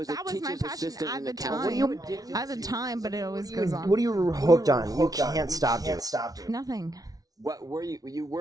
a that was my teacher's passion assistant at in the accounting. time. At the time, but it always goes on. What are you hooked on? You can't stop doing. Nothing. What were you? You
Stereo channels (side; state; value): left; late; 0.18 ms